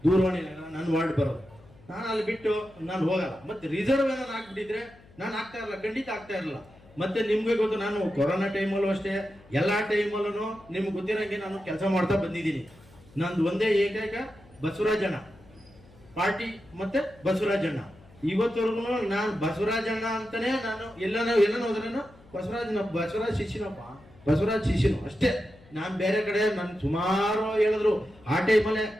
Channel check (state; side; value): noise; left; hum, 25 dB below the sound